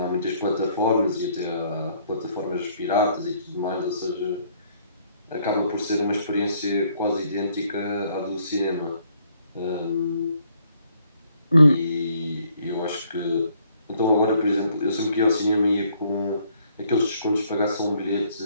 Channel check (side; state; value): both; inverted; correlation -0.66